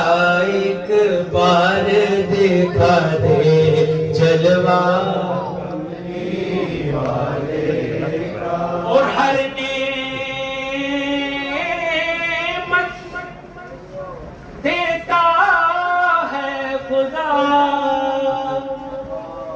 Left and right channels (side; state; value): both; identical; correlation 1.00